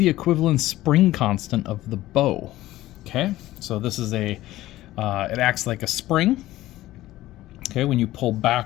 equivalent spring constant of the bow? Okay, so this is it acts like a spring. Okay, when you pull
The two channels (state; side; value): quieter; right; 15.9 dB